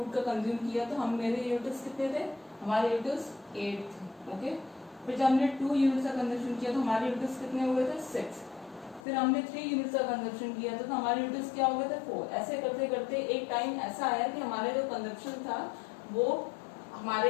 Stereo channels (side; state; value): right; drops out; at 9.0 s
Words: का कंज्यूम किया तो हम मेरे यूनिट्स कितने थे, हमारे यूनिट्स 8 थे। ओके, फिर जब हमने 2 यूनिट्स का कंजप्शन किया तो हमारे यूनिट्स कितने हुए थे, 6। फिर हमने 3 यूनिट्स का कंजप्शन किया तो हमारे यूनिट्स क्या हो गए थे, 4। ऐसे करते करते एक टाइम ऐसा आया कि हमारे जो कंजप्शन था वो